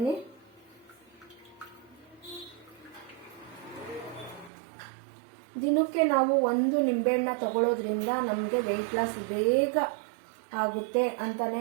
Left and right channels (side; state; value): left; drops out; at 4.5 s